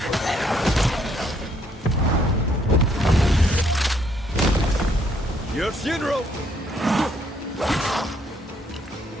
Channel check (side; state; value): both; normal; correlation 0.69